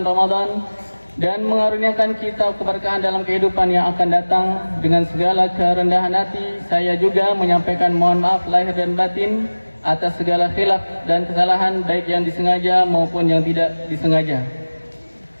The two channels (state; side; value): inverted; both; correlation -1.00